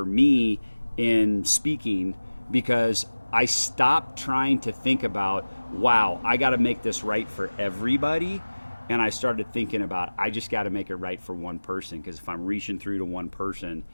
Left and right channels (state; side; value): inverted; both; correlation -1.00